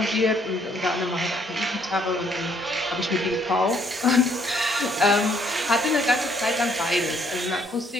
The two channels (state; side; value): normal; both; correlation 0.67